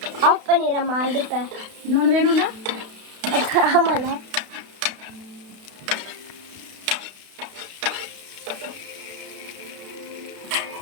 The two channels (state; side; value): late; left; 32 ms